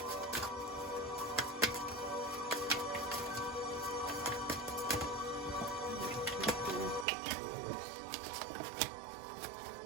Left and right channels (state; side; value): drops out; left; at 7.1 s